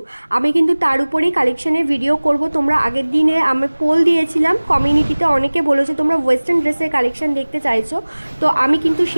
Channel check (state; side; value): inverted; both; correlation -1.00